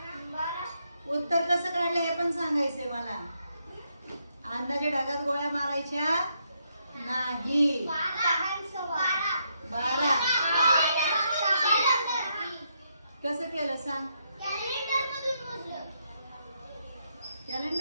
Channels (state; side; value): inverted; both; correlation -0.78